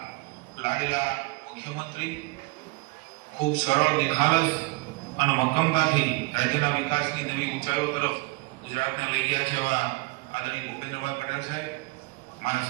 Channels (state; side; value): quieter; left; 24.6 dB